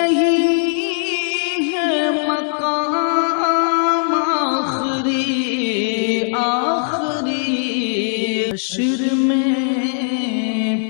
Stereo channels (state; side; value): silent; right; 62 dB below the other